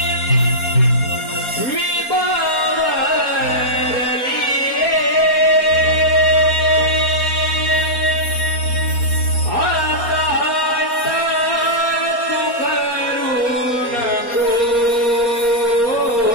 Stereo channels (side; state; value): right; late; 4.3 ms